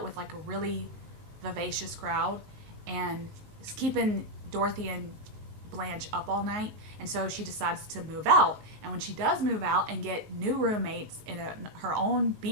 with like a really vivacious crowd, and is keeping Dorothy and Blanche up all night, and so she decides to move out. And when she does move out and get new roommates in her own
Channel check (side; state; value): left; late; 19 ms